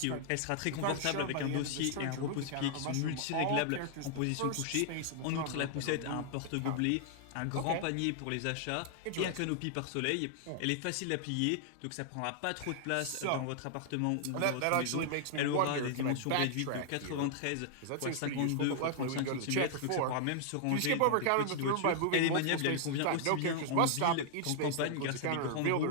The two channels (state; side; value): different; both; correlation -0.01